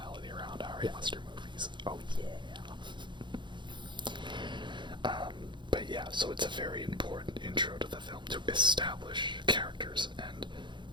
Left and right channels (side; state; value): left; late; 0.23 ms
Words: around Ari Aster movies. Oh yeah. But yeah, so it's a very important intro to the film to establish characters and